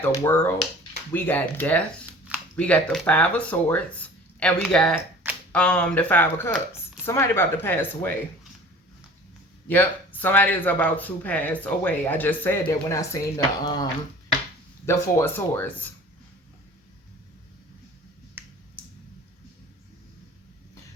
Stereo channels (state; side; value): normal; both; correlation 0.44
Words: the world, we got death, we got the 5 of Swords, and we got the 5 of Cups. Somebody about to pass away. Yep, somebody is about to pass away. I just said that when I seen the 4 of Swords.